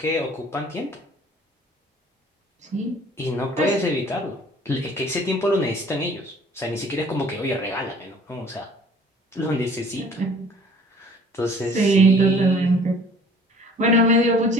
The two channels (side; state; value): both; normal; correlation 0.51